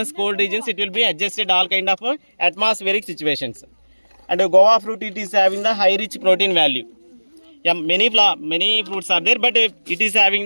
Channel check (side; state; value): both; inverted; correlation -1.00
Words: cold regions it will be adjusted all kind of atmospheric situations. And guava fruit it is having the high rich protein value. Yeah, many fruits are there but it is having